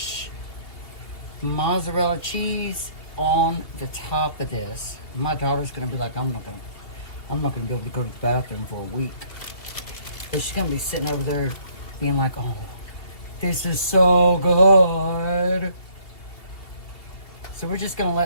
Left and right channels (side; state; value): right; late; 2.7 ms